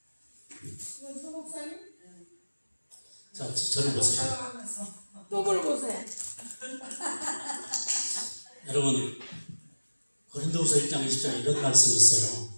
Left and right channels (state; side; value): inverted; both; correlation -1.00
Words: 자, 저를 보세요. 똥을 보세요. 여러분, 고린도후서 1장 20장에 이런 말씀이 있어요.